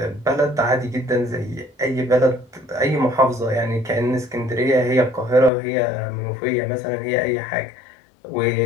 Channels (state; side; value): drops out; right; at 5.5 s